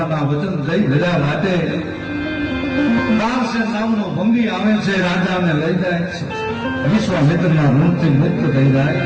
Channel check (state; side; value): identical; both; correlation 1.00